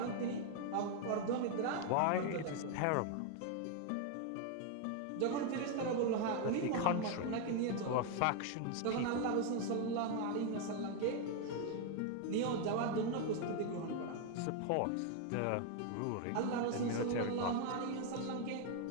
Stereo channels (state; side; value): different; both; correlation 0.01